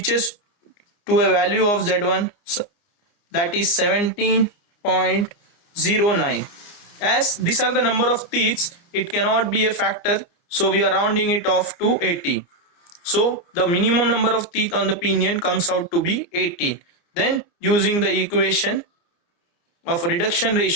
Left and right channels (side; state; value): right; late; 29 ms